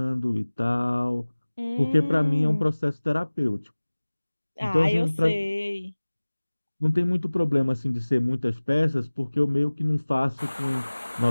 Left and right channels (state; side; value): inverted; both; correlation -1.00